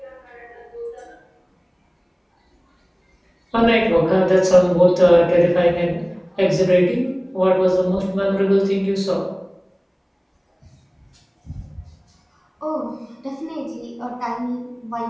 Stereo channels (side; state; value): both; identical; correlation 1.00